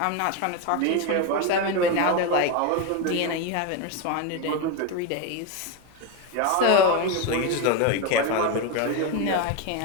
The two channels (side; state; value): both; different; correlation 0.03